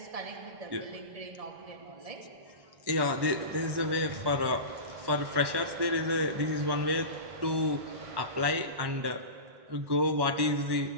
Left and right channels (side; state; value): left; late; 1.1 ms